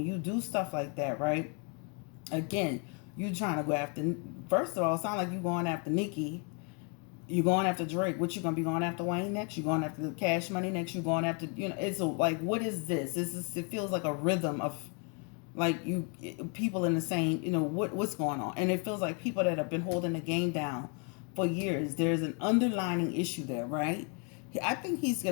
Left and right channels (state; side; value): quieter; right; 37.3 dB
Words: you do stuff like that, right? Again, you trying to go after, first of all, it sounds like you going after Nicki. You going after Drake. What you gonna be going after Wayne next? You going after the Cash Money next? You going after, it's like, what is this? It feels like a rhythm of like people in the same, what's going on, and it feels like people that have been holding the game down for years. There's an underlining issue there, right? I think he's